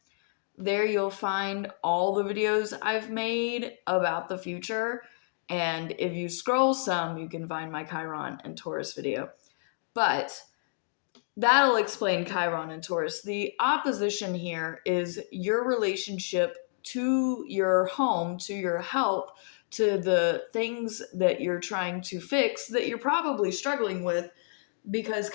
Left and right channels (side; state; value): right; silent; digital silence